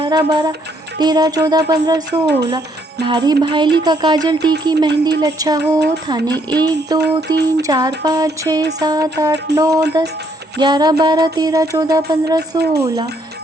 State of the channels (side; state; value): both; normal; correlation 0.70